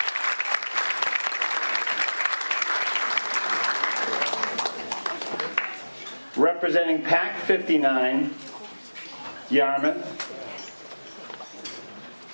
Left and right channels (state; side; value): inverted; both; correlation -1.00